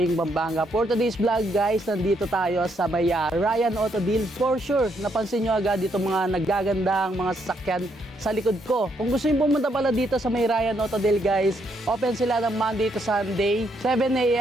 Pampanga. For today's vlog, guys, nandito tayo sa may Ryan Auto Deal. For sure, napansin nyo agad dito mga naggagandang mga sasakyan sa likod ko. Kung gusto nyo pumunta pala dito sa may Ryan Auto Deal, guys, open sila ng Monday to Sunday, 7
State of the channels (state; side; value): normal; both; correlation 0.75